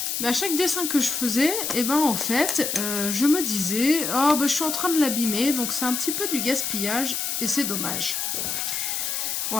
Mais à chaque dessin que je faisais, eh ben en fait, je me disais « Oh, ben, je suis en train de l'abîmer, donc c'est un petit peu du gaspillage et c'est dommage. »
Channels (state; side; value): noise; left; hiss, 1 dB below the sound